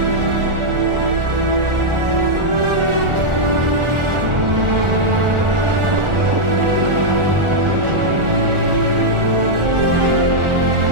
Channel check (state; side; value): late; left; 1.4 ms